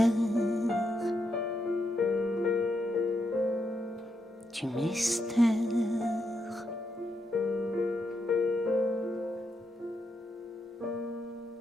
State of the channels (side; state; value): both; normal; correlation 0.81